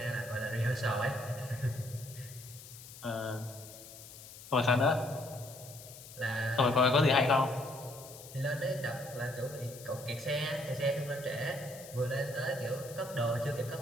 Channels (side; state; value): left; noise; hiss, 16 dB below the sound